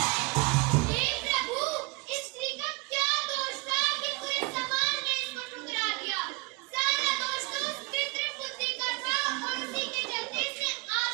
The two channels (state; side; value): quieter; left; 25.8 dB